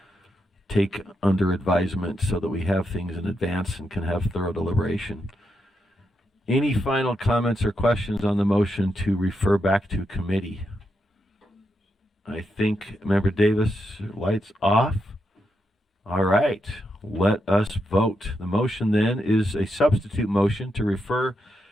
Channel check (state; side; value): normal; both; correlation 0.83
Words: take under advisement so that we have things in advance and can have thorough deliberation. Any final comments or questions on the motion to refer back to committee? I think, Member Davis, lights off. All right, let us vote. The motion then is a substitute motion to refer